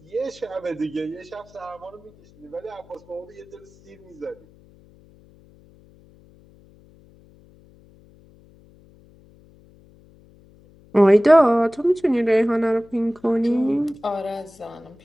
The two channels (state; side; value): noise; left; hum, 27 dB below the sound